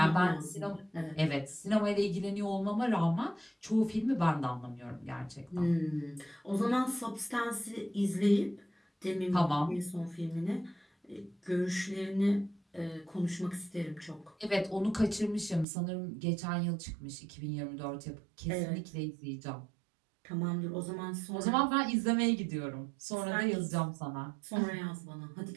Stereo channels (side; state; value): left; drops out; at 15.7 s